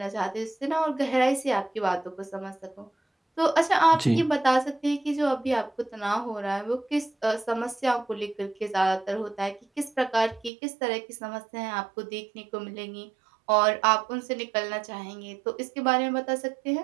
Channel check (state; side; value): drops out; left; at 10.5 s